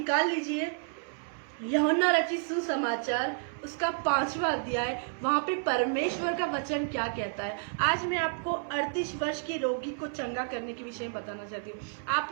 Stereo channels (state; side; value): silent; left; 57 dB below the other